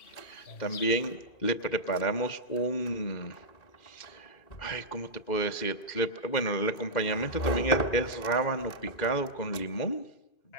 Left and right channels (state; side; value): late; right; 2.5 ms